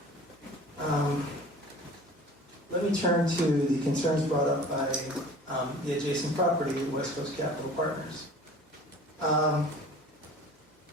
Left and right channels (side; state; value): both; normal; correlation 0.44